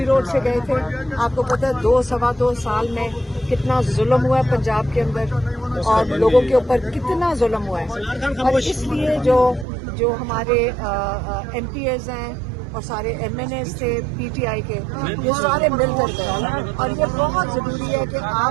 روڈ سے گئے تھے. آپ کو پتہ ہے 2 سال میں کتنا ظلم ہوا ہے پنجاب کے اندر اور لوگوں کے اوپر کتنا ظلم ہوا ہے. اور اس لیے جو ہمارے ایم پی ایز ہیں اور سارے ایم این ایز تھے پی ٹی آئی کے, یہ سارے مل کر گئے. اور یہ بہت ضروری ہے کہ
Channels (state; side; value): drops out; left; at 9.7 s